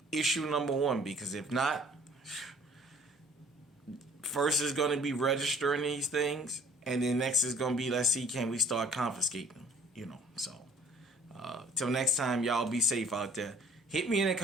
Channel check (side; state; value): both; normal; correlation 0.54